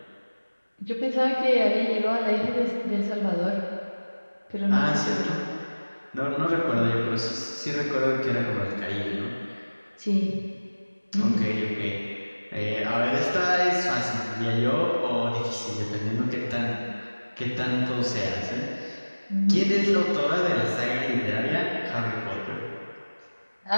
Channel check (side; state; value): both; inverted; correlation -1.00